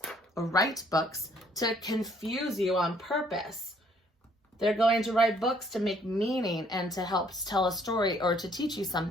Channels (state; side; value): normal; both; correlation 0.64